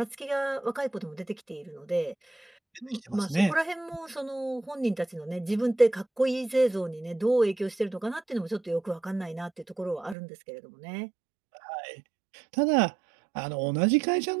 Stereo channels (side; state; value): left; drops out; at 10.2 s